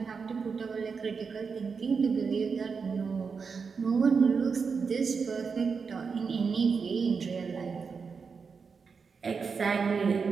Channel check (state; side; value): quieter; left; 5.4 dB